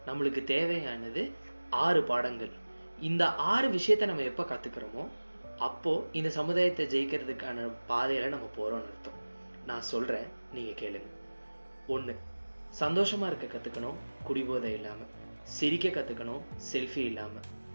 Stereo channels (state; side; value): inverted; both; correlation -1.00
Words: நம்மளுக்கு தேவையானது 6 பாடங்கள். இந்த 6 விஷயத்தை நம்ம எப்போ கற்றுக்கிறோமோ அப்போது இந்த சமுதாயத்தை ஜெயிக்கிறதுக்கான பாதையில் நம்ம போகிறோம்னு அர்த்தம். நான் சொல்கிறேன், நீங்கள் கேளுங்க. 1, சந்தோஷமாக இருக்க கற்றுக்கணும், குடிபோதை இல்லாமல். சிரிக்க கற்றுக்கணும், செல்ஃபி இல்லாமல்.